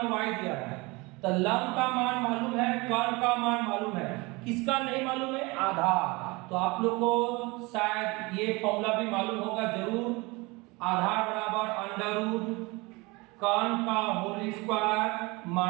y दिया है। तो लंब का मान मालूम है, कॉन का मान मालूम है, किसका नहीं मालूम है, आधार। तो आप लोग को शायद ये फॉर्मूला भी मालूम होगा जरूर, आधार बराबर अंडर रूट कॉन का होल स्क्वायर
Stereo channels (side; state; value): left; quieter; 24.9 dB